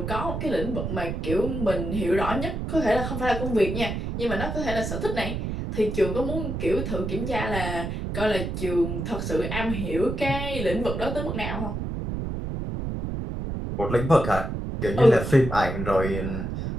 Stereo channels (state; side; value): noise; right; rumble, 4 dB below the sound